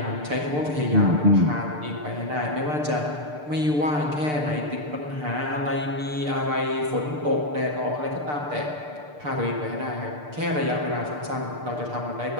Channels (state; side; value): late; left; 6.7 ms